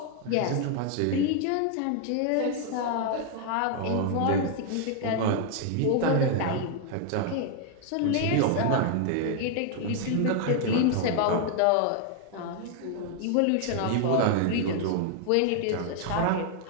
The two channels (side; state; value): both; different; correlation 0.00